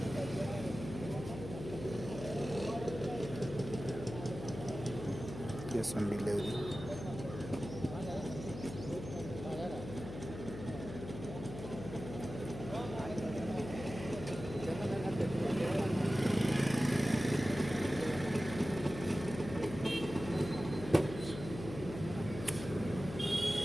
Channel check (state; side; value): noise; left; hum, 9 dB below the sound